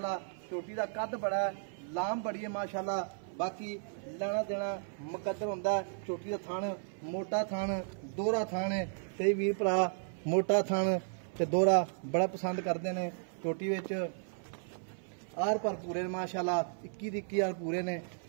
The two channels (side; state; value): left; silent; 55 dB below the other